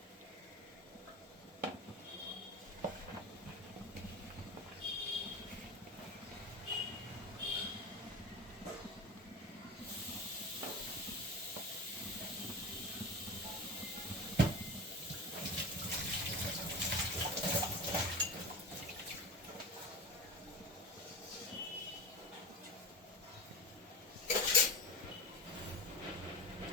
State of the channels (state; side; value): normal; both; correlation 0.29